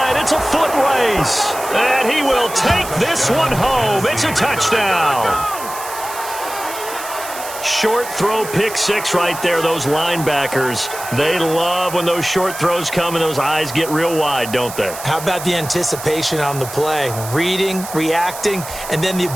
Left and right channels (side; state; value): right; noise; hiss, 11 dB below the sound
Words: It's a foot race. And he will take this one home. It's a touchdown. Short throw, pick six right there. Those linebackers, they love when those short throws come and those eyes get real wide, don't they? How about the anticipation on the play? Reading, reacting, and then the